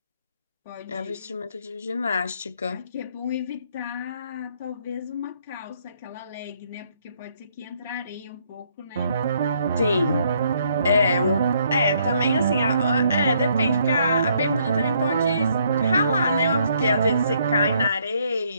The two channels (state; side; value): inverted; both; correlation -0.69